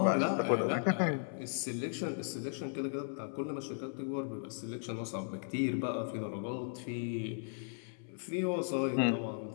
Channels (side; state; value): right; silent; 54 dB below the other